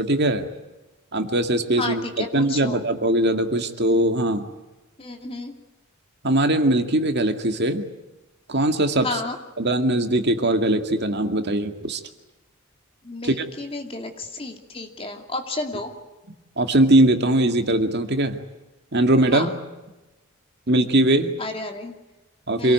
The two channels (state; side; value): normal; both; correlation 0.29